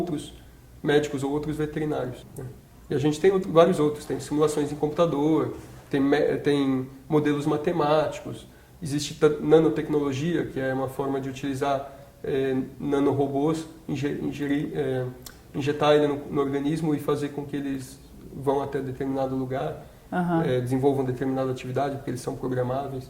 médicos ou outros veterinários, né? E a gente tem vários outros, tem simulações em computador, tem modelos matemáticos, existe nanotecnologia, que é uma forma de utilizar nanorobôs, injetar ele no organismo e fazer com que eles vão até determinado lugar, desenvolvam determinada atividade, porque eles são programáveis.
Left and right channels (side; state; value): both; identical; correlation 1.00